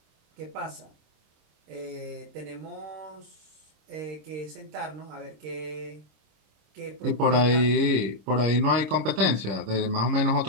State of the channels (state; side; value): late; left; 26 ms